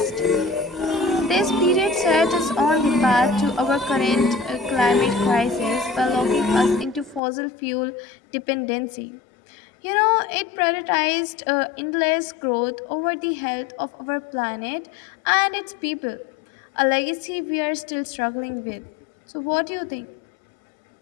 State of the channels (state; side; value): drops out; right; at 7.2 s